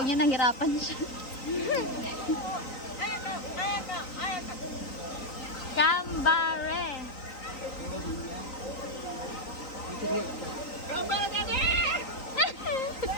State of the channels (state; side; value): late; right; 3.8 ms